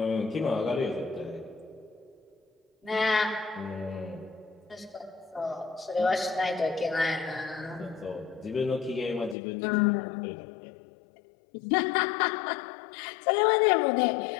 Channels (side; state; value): right; drops out; at 9.3 s